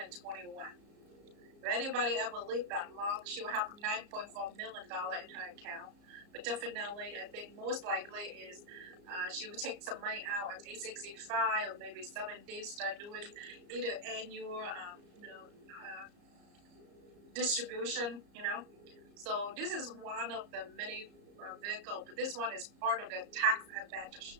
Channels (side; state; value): left; late; 34 ms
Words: If anybody ever lived that long, she'll have $9.4 million in her account. But definitely, I think most likely is she will take some money out at age 65 or maybe 70, start doing either annual, distribution, So this is one of the many vehicle, but this one is part of the tax advantage,